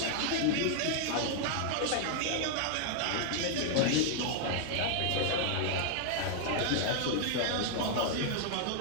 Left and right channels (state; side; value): different; both; correlation 0.00